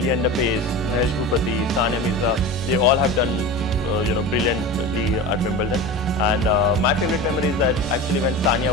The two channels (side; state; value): both; normal; correlation 0.29